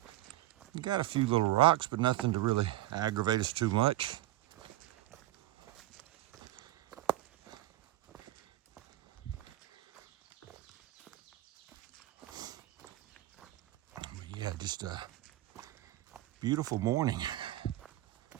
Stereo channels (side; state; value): left; quieter; 15.7 dB